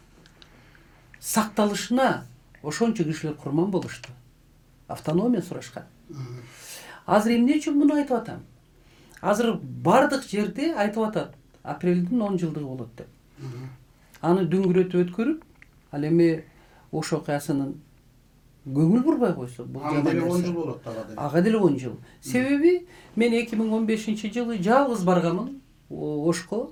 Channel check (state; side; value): identical; both; correlation 1.00